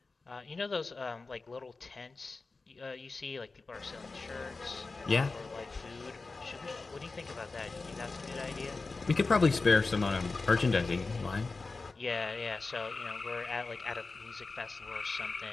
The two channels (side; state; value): right; quieter; 3.8 dB